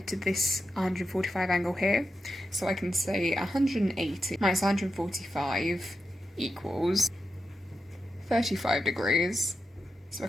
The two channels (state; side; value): normal; both; correlation 0.88